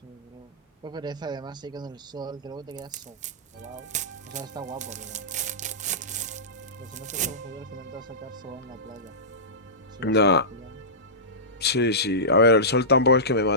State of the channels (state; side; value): normal; both; correlation -0.18